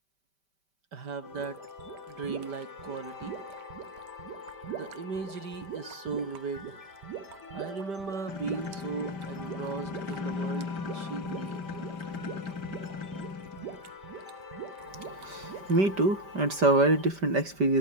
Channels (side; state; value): left; late; 5.1 ms